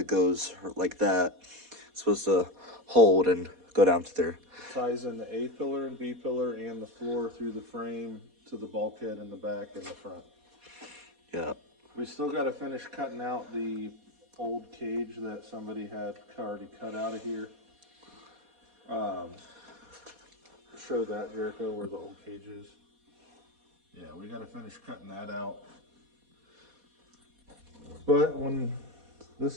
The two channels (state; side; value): late; left; 4.2 ms